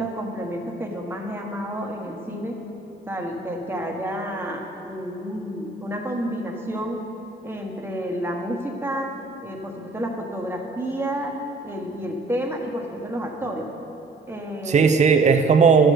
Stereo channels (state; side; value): quieter; left; 3.7 dB